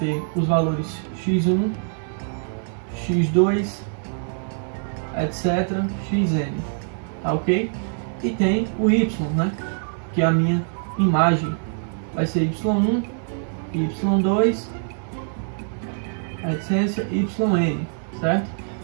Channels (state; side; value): silent; left; 61 dB below the other